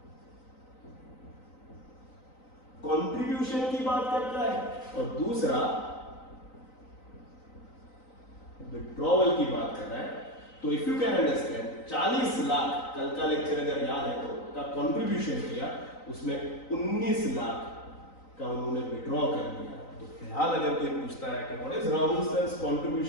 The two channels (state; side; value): late; right; 3.9 ms